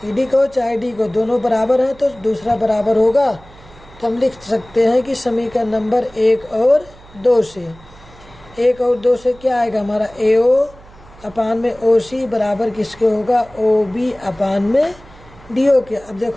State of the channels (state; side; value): noise; right; hum, 23 dB below the sound